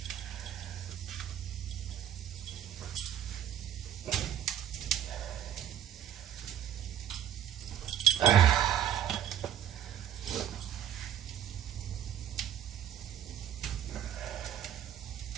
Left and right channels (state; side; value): quieter; left; 10.4 dB